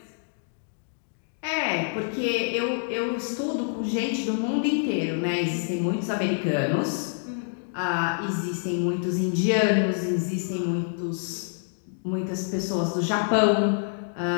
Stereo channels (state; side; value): silent; right; digital silence